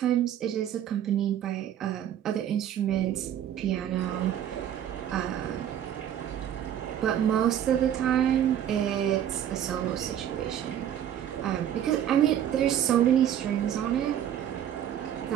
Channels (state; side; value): quieter; left; 10.4 dB